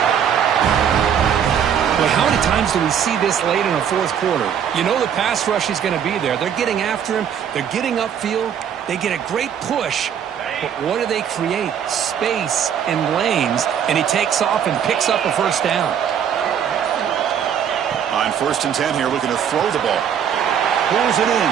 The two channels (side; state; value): left; quieter; 8.5 dB